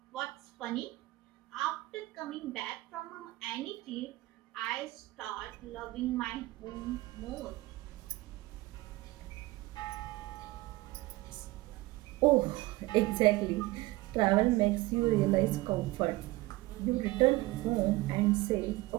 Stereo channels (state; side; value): quieter; left; 19.7 dB